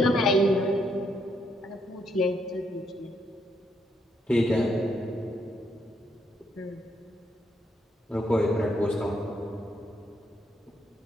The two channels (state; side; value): normal; both; correlation 0.75